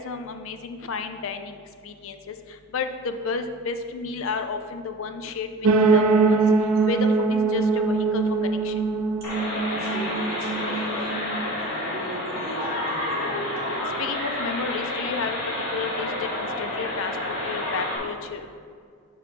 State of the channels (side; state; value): both; normal; correlation 0.31